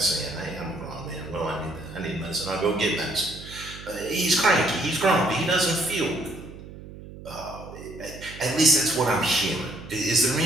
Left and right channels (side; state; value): right; noise; hum, 15 dB below the sound